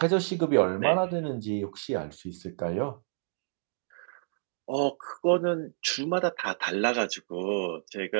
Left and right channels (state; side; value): silent; left; digital silence